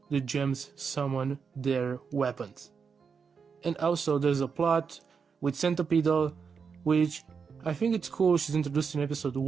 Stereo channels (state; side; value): quieter; left; 5.9 dB